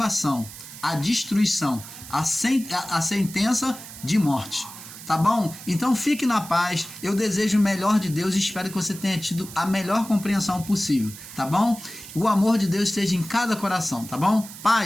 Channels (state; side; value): noise; right; hiss, 14 dB below the sound